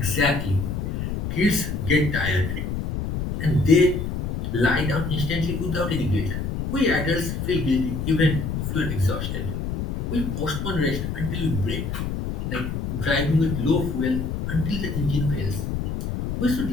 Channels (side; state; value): left; noise; rumble, 3 dB below the sound